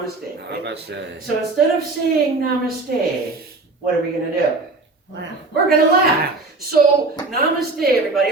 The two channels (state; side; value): quieter; left; 3.4 dB